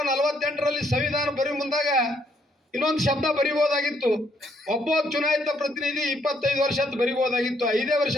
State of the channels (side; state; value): both; normal; correlation 0.70